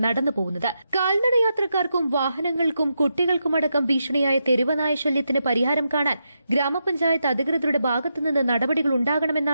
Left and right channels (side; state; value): both; inverted; correlation -0.85